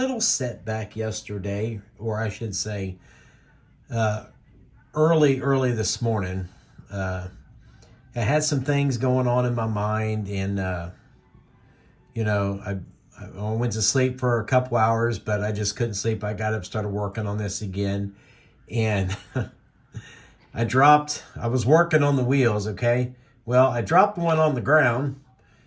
setback yesterday, or I should say early this morning. I had some things going on in my mind, and I went to sleep for a couple hours, but I just couldn't sleep. I got up, started working on this again, and I was working on the wheels, okay? Well, I dropped one on the ground,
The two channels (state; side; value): identical; both; correlation 1.00